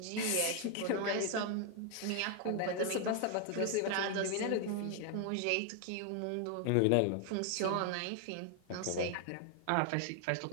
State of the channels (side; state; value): both; different; correlation 0.00